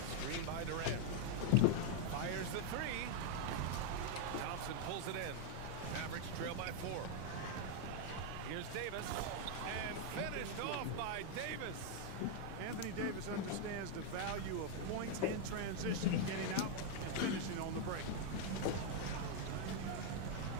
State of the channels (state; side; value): different; both; correlation 0.00